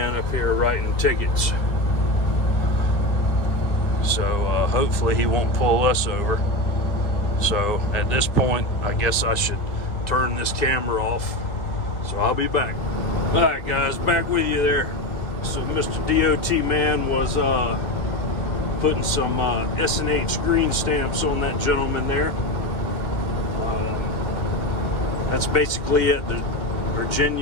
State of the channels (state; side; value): late; right; 1.9 ms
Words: up here writing tickets, so hopefully he won't pull us over. So at this point, I guess I should turn this camera off, so I'll be back. All right, guys, back with you there. So Mr. DOT man was putting some S&H green stamps on that gentleman there. That's basically at the